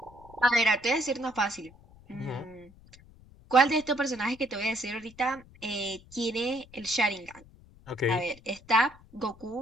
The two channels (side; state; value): left; noise; rumble, 24 dB below the sound